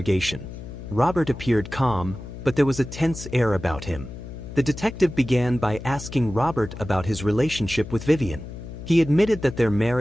Robert appeared calm, but there was a tense air about him. The detective began by asking Robert about his relationship with Vivian. He admitted that their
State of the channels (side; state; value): left; noise; hum, 11 dB below the sound